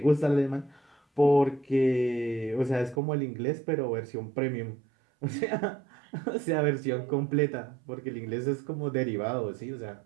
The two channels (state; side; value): drops out; left; at 3.0 s